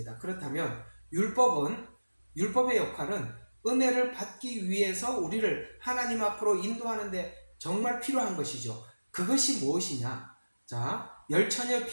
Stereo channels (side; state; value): both; inverted; correlation -1.00